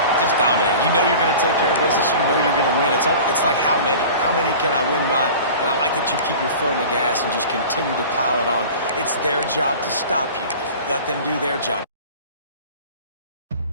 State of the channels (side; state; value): both; inverted; correlation -0.39